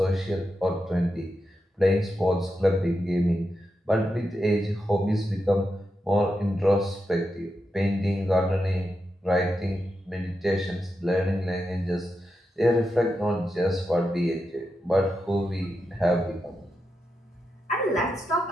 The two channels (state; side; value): normal; both; correlation 0.87